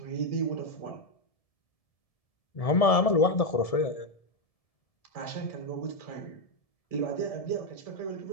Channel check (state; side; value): late; right; 1.7 ms